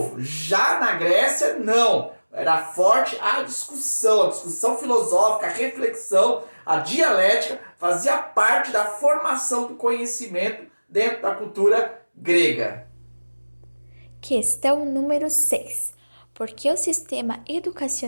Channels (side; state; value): both; inverted; correlation -1.00